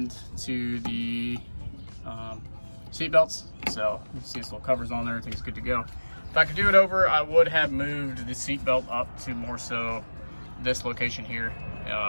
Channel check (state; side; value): inverted; both; correlation -1.00